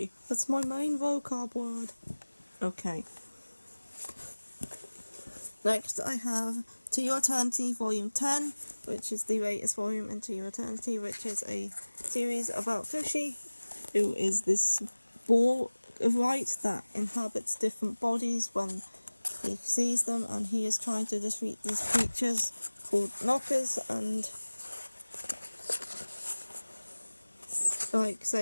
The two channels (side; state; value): both; inverted; correlation -1.00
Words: That's my main vocab word. Okay. Next I have To Your Eternity Volume 10, which is the latest volume in To Your Eternity, which is a series about Fushi, who is this ball of light that inhabits different bodies when he sees them, and he is trying to defeat these creatures called knockers and like